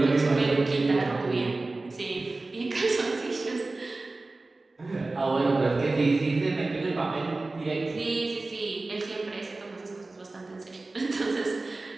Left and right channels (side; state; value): left; quieter; 3.3 dB